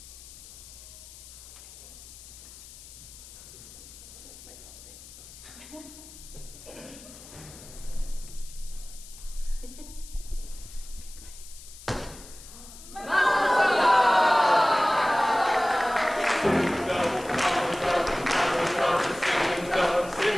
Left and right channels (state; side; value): noise; left; hiss, 17 dB below the sound